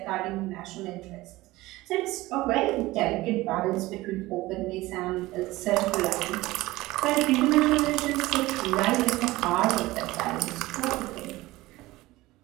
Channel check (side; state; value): left; quieter; 18.8 dB